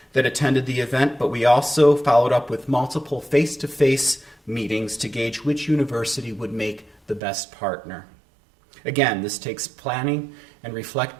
that attended the event, but we also followed up with multiple face-to-face meetings to gauge which university would make the best partner. Again, this takes planning and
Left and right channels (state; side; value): drops out; left; at 7.2 s